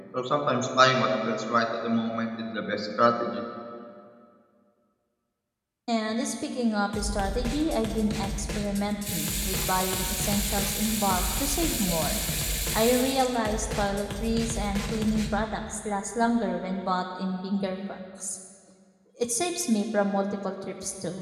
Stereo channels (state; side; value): identical; both; correlation 1.00